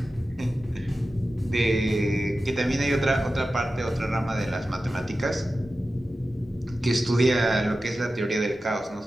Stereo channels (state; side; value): normal; both; correlation 0.93